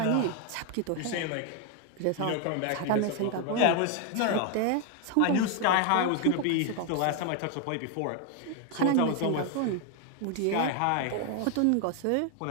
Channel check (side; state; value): both; different; correlation 0.01